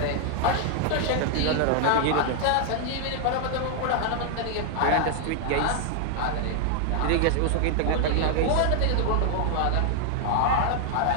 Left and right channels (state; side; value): different; both; correlation 0.00